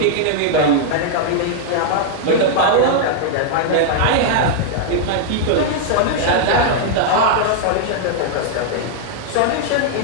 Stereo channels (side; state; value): both; different; correlation -0.01